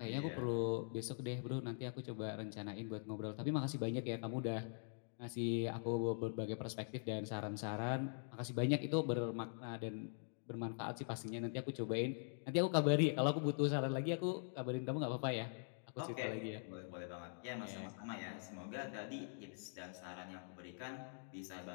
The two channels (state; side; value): silent; right; digital silence